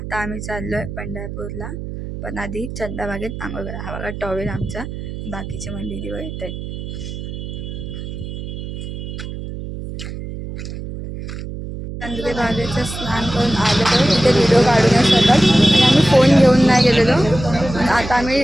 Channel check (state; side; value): noise; right; hum, 8 dB below the sound